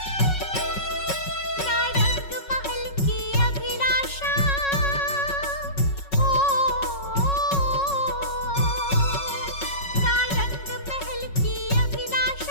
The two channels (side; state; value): right; late; 5.4 ms